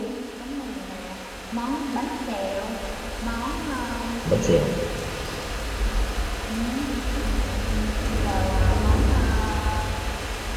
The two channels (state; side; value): identical; both; correlation 1.00